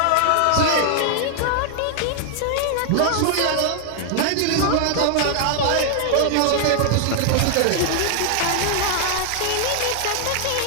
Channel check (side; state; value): both; different; correlation 0.00